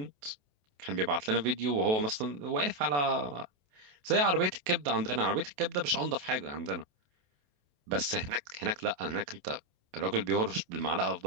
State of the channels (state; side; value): late; left; 28 ms